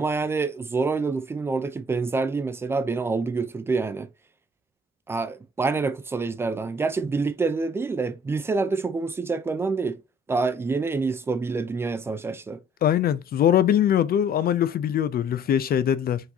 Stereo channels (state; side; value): normal; both; correlation 0.57